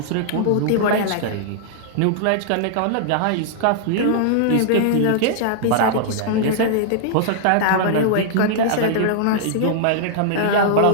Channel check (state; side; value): different; both; correlation -0.01